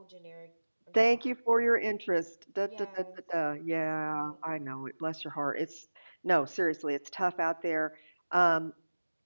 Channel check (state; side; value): inverted; both; correlation -1.00